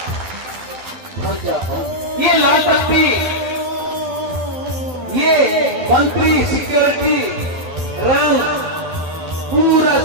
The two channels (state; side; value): late; left; 12 ms